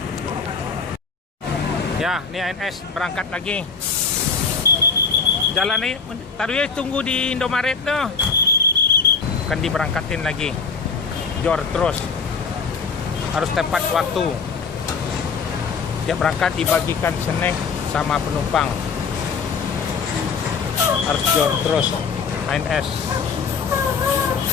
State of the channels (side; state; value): right; quieter; 5.4 dB